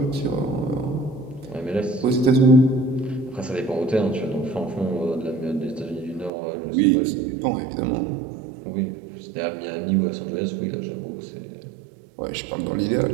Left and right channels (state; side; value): drops out; left; at 6.3 s